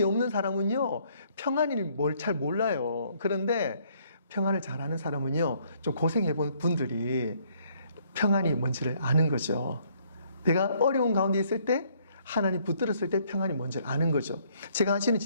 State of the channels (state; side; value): inverted; both; correlation -0.66